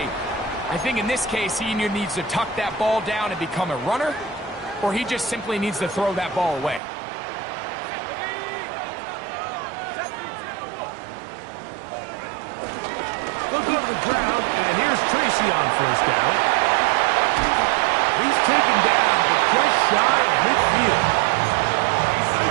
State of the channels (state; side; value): drops out; left; at 6.8 s